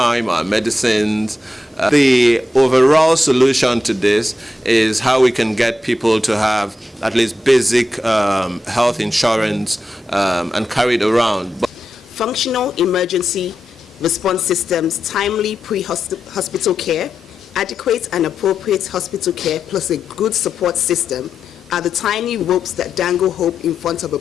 our medicines? The overall solution to this is how we can get people to have at least basic health insurance and carry it around. Functional emergency response systems, timely pre-hospital care, adequate and appropriate hospital care, plus a good support system are the tiny ropes that dangle hope in front of a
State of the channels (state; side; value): normal; both; correlation 0.88